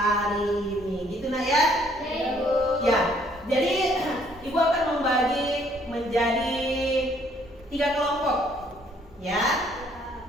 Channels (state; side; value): normal; both; correlation 0.64